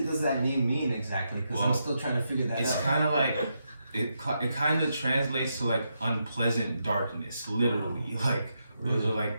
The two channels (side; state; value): both; inverted; correlation -0.83